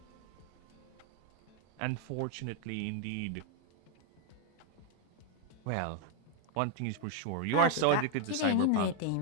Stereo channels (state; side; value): different; both; correlation 0.00